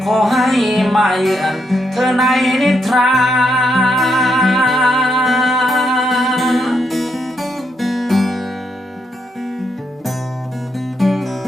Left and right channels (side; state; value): both; normal; correlation 0.79